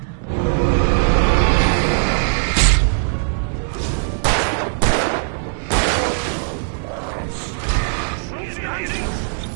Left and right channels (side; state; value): left; silent; digital silence